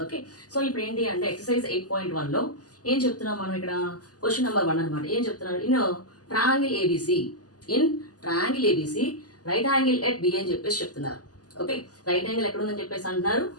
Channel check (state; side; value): late; right; 0.67 ms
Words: ఓకే, సో ఇప్పుడు ఏంటి అంటే ఎక్సర్సైజ్ 8.1లో ఏం చెప్తున్నాం మనం ఇక్కడ క్వశ్చన్ నెంబర్ 1 అనమాట. ఏం చెప్తున్నారు? Triangle A B C in triangle A B C right angle at B అని చెప్పేసి చెప్తున్నారు. ఓకే, రైట్ యాంగిల్ ఎక్కడ ఉందని చెప్పేసి అంటున్నారు,